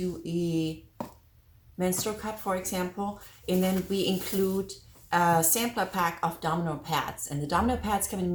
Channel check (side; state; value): both; identical; correlation 1.00